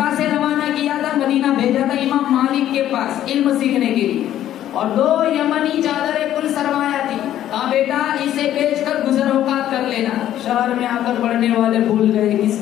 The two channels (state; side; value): quieter; right; 12.0 dB